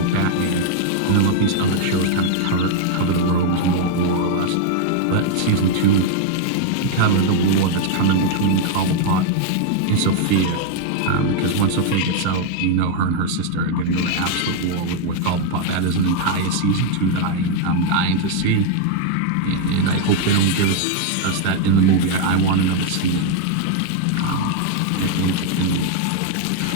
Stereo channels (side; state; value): both; different; correlation 0.00